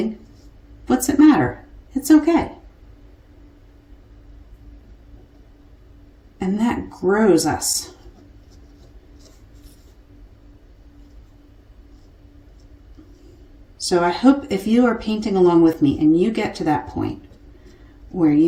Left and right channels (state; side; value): identical; both; correlation 1.00